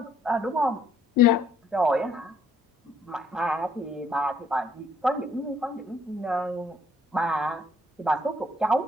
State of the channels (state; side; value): normal; both; correlation 0.65